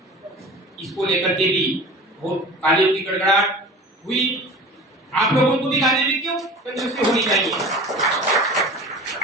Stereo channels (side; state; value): both; normal; correlation 0.38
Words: इसको लेकर के भी बहुत तालियों की गड़गड़ाहट हुई। आप लोगों को भी गाने में क्यों कंजूसी होनी चाहिए।